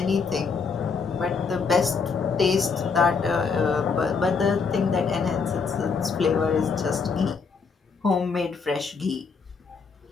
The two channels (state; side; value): quieter; right; 5.2 dB